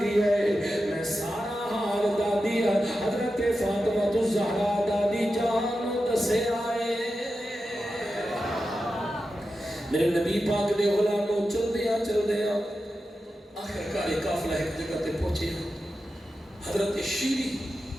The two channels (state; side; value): normal; both; correlation 0.91